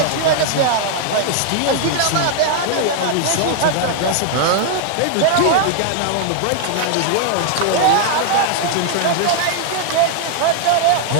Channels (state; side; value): different; both; correlation 0.00